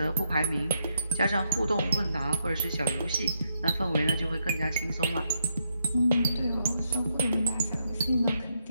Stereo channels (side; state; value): both; inverted; correlation -0.79